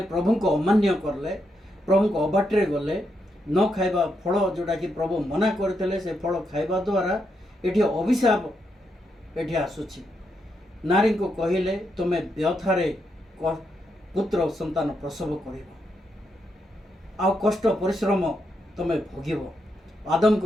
ପ୍ରଭୁଙ୍କୁ ଅମାନ୍ୟ କଲେ, ପ୍ରଭୁଙ୍କ ଅବାଟରେ ଗଲେ, ନ ଖାଇବା ଫଳ ଯେଉଁଟାକି ପ୍ରଭୁ ମନା କରିଥିଲେ, ସେ ଫଳ ଖାଇବା ଦ୍ୱାରା ଏଠି ଅଭିଶାପ ଏଠି ଆସୁଛି। ନାରୀଙ୍କୁ କହିଲେ ତୁମେ ବ୍ୟଥାରେ ପୁତ୍ର ସନ୍ତାନ ପ୍ରସବ କରିବ, ଆଉ କଷ୍ଟ ପରିଶ୍ରମ ତୁମେ ଭୋଗିବ।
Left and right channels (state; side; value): normal; both; correlation 0.81